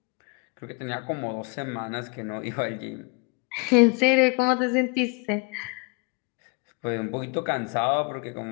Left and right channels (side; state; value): right; quieter; 30.4 dB